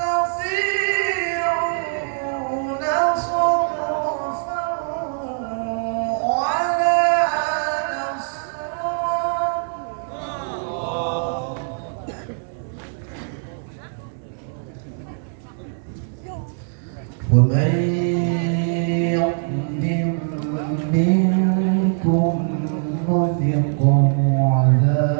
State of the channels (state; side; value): silent; left; digital silence